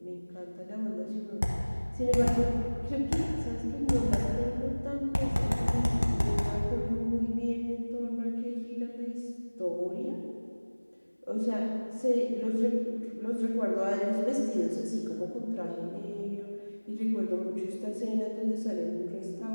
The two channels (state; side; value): inverted; both; correlation -1.00